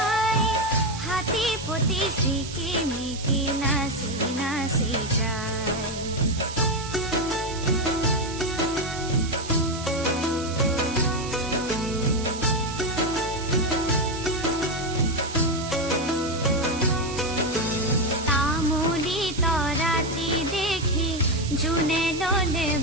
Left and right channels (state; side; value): noise; right; hiss, 11 dB below the sound